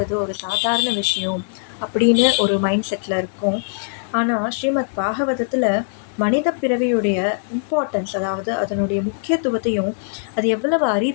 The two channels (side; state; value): right; silent; digital silence